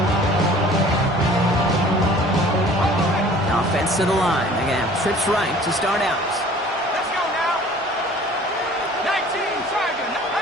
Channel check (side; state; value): both; normal; correlation 0.49